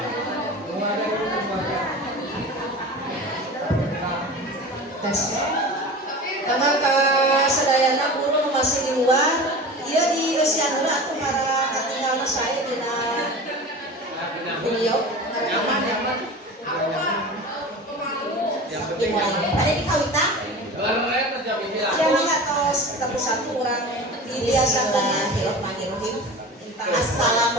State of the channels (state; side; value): normal; both; correlation 0.34